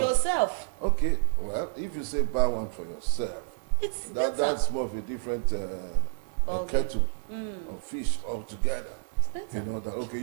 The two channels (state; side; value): silent; left; digital silence